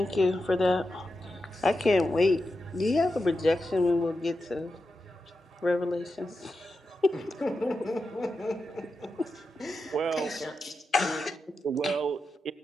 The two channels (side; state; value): both; normal; correlation 0.89